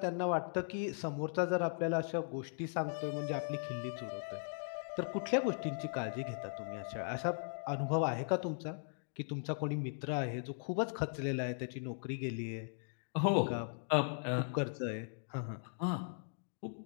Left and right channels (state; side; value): silent; right; digital silence